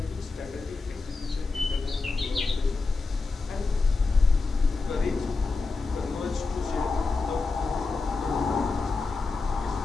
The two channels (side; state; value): right; quieter; 4.0 dB